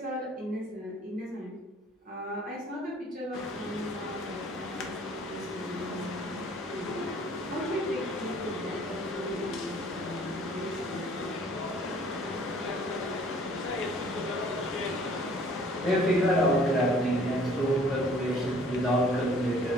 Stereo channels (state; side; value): normal; both; correlation 0.54